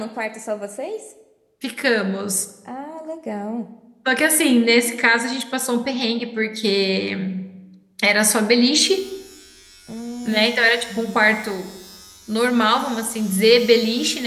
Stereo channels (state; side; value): identical; both; correlation 1.00